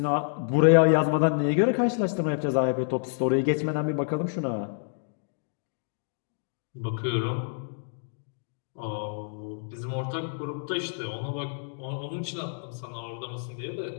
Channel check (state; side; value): silent; right; digital silence